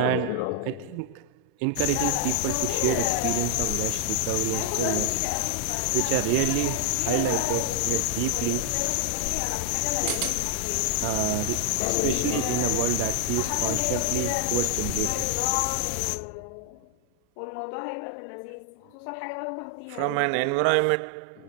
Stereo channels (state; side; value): different; both; correlation 0.00